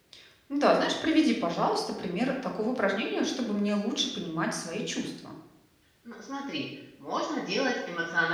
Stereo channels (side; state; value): both; identical; correlation 1.00